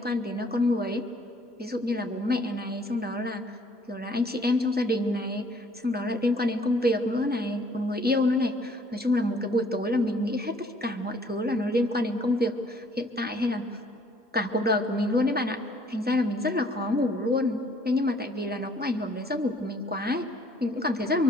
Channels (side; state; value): both; normal; correlation 0.60